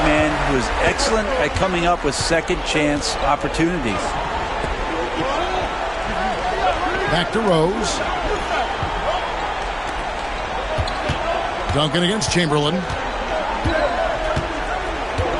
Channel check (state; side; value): identical; both; correlation 1.00